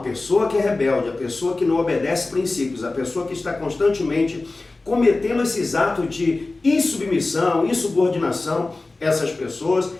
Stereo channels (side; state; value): right; quieter; 3.3 dB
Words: pessoa que é rebelde, a pessoa que não obedece princípios, a pessoa que está constantemente cometendo esses atos de insubmissão, insubordinação, essas pessoas